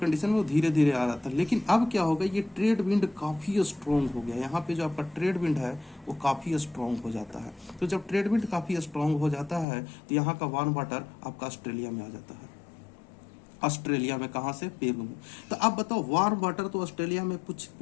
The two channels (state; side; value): drops out; right; at 9.7 s